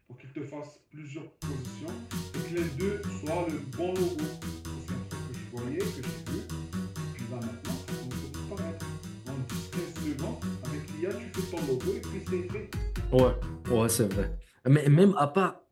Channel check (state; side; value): identical; both; correlation 1.00